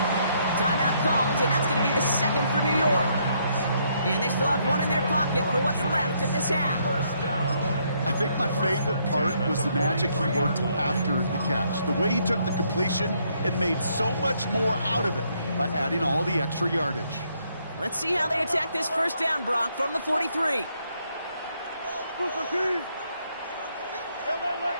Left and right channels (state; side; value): inverted; both; correlation -0.72